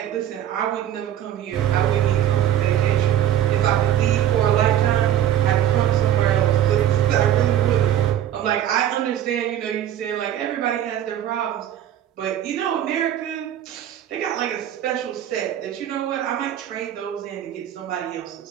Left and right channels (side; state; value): left; quieter; 11.0 dB